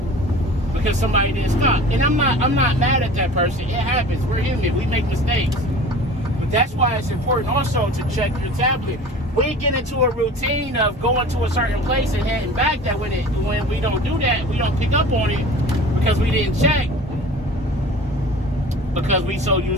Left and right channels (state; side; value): normal; both; correlation 0.41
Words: because somebody didn't stop. And I'm not mad at that person. It happens. We're human. We make mistakes. But that's why it's important also to check your tablet. We get into a routine of going to a certain place and heading back, that when we don't do that, we don't pick up on it because we didn't check. Because we so